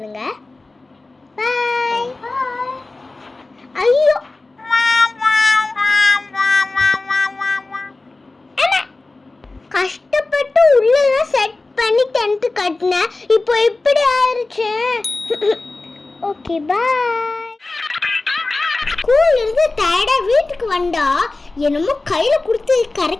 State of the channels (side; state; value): right; quieter; 3.3 dB